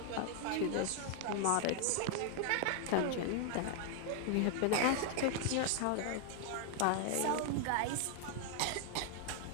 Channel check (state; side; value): different; both; correlation 0.00